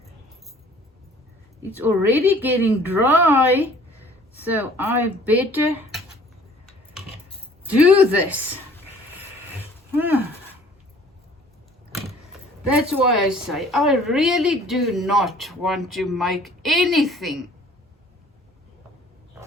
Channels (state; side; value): normal; both; correlation 0.53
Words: it's already getting dry, so I better do this. That's why I say I really do not want to make anything